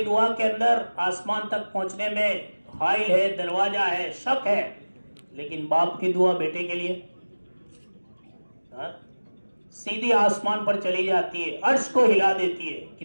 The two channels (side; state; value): both; inverted; correlation -1.00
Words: दुआ के अंदर आसमान तक पहुंचने में हाइल है, दरवाजा है, शक है, लेकिन बाप की दुआ बेटे के लिए सीधी आसमान पर चली जाती है, अर्श को हिला देती है।